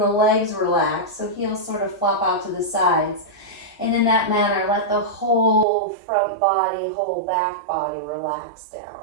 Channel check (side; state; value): left; drops out; at 5.7 s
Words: the legs relax. So heels sort of flop out to the sides. And in that manner, let the whole front body, whole back body relax